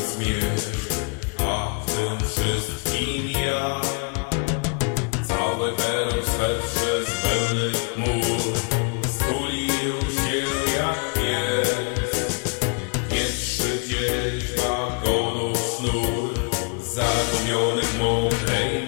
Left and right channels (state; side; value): quieter; right; 34.5 dB